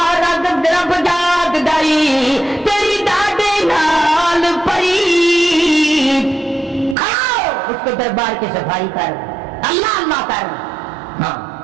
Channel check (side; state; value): left; drops out; at 7.0 s